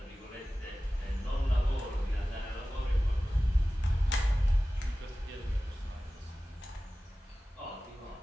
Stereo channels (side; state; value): both; normal; correlation 0.96